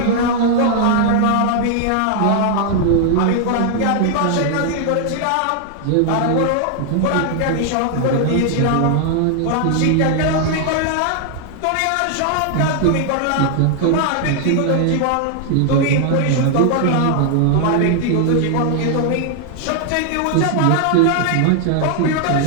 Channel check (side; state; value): both; different; correlation 0.00